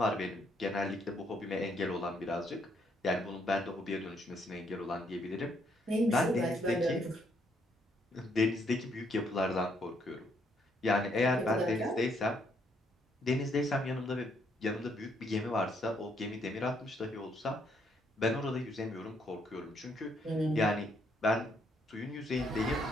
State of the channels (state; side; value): normal; both; correlation 0.71